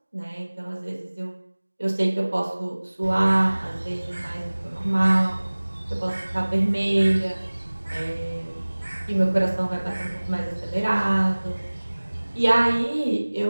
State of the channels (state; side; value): inverted; both; correlation -1.00